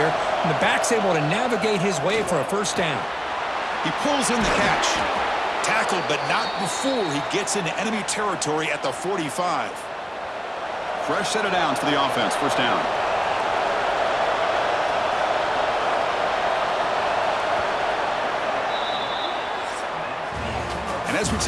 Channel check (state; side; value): identical; both; correlation 1.00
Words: and the back's able to navigate his way for a 1st down. He pulls in the catch. Tackled, but not before he gets into enemy territory at the 45. Fresh set of downs for the offense. 1st down. And as we